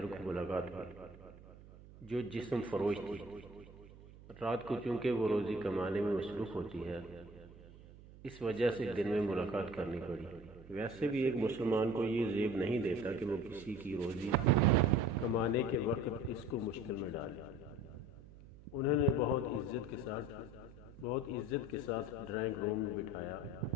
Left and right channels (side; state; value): right; noise; hum, 19 dB below the sound